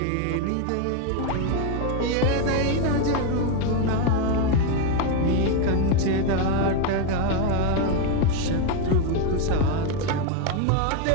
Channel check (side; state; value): both; different; correlation 0.02